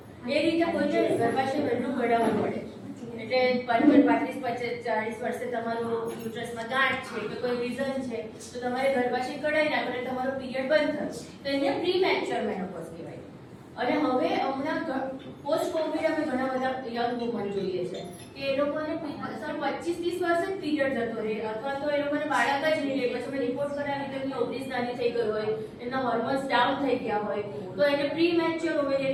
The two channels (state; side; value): identical; both; correlation 1.00